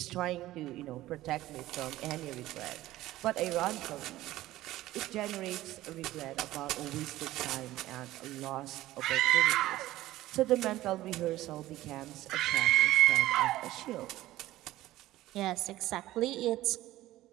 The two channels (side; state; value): left; quieter; 15.8 dB